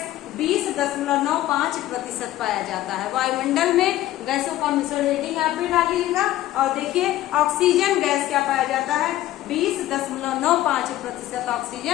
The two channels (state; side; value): quieter; right; 14.6 dB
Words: 20.95% पाया जाता है। वायुमंडल में गैसों का मिश्रण रेटिंग आप भी डालिएगा और देखिए ऑक्सीजन गैस क्या पाया जाता है 20.95%